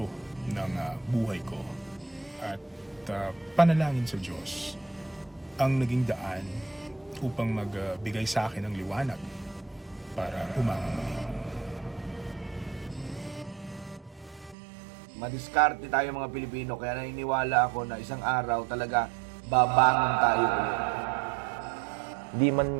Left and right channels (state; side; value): drops out; left; at 14.6 s